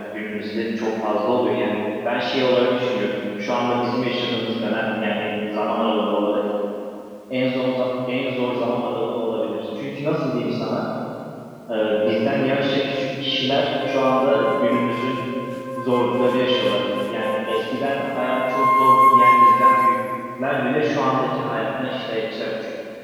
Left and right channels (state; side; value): identical; both; correlation 1.00